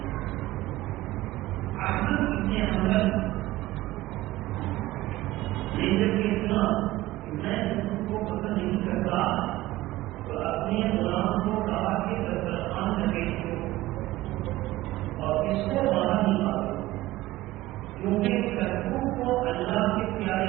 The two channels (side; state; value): left; quieter; 17.2 dB